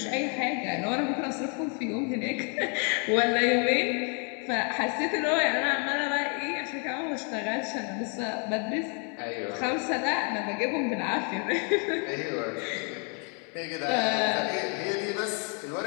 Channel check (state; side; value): quieter; right; 38.6 dB